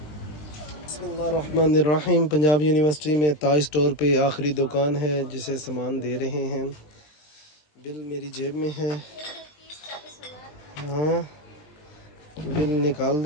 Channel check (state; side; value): late; right; 20 ms